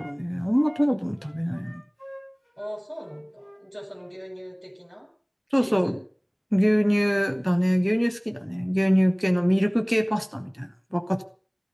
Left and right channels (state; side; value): identical; both; correlation 1.00